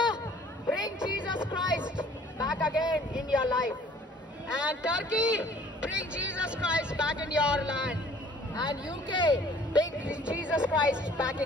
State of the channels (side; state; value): both; normal; correlation 0.54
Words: bring Jesus Christ back again in your life. And Turkey, bring Jesus Christ back in your land. And UK, bring Jesus Christ back